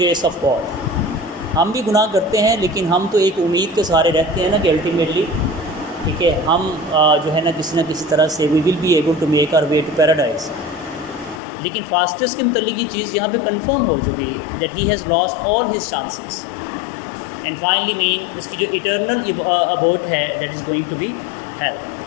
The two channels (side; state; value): right; drops out; at 11.4 s